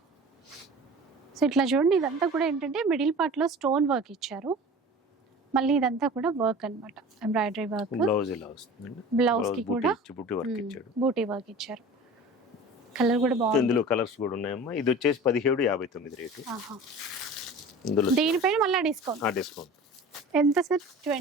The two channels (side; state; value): both; normal; correlation 0.39